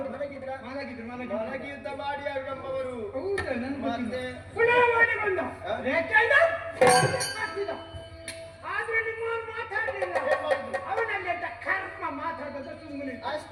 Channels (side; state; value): both; identical; correlation 1.00